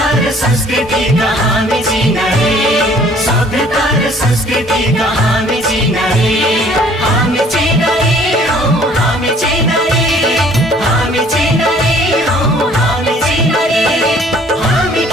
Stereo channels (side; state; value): both; normal; correlation 0.56